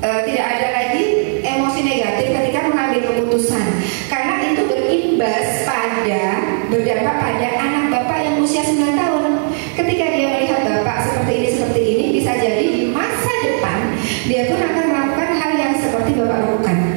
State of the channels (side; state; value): left; silent; 65 dB below the other